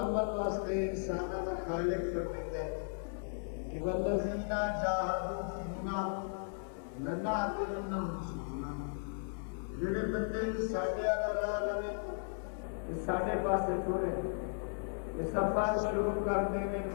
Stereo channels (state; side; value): silent; right; 54 dB below the other